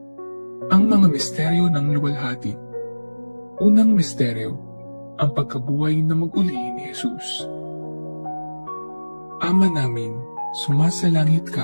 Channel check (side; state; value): both; inverted; correlation -1.00